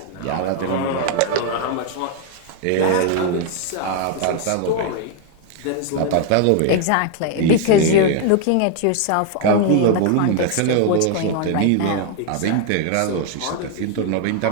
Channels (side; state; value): both; different; correlation 0.00